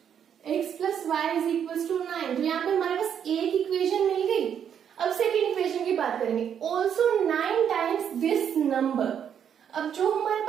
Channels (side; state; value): left; quieter; 8.5 dB